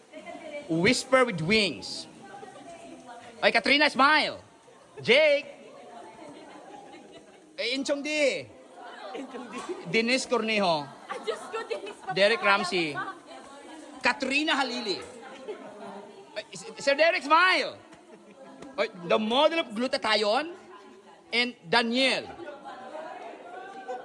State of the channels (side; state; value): both; identical; correlation 1.00